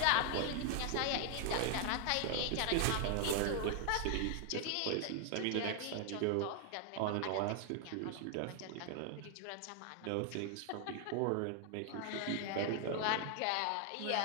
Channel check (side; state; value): both; different; correlation 0.00